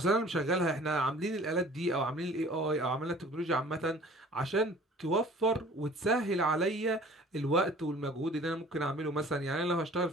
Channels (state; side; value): normal; both; correlation 0.49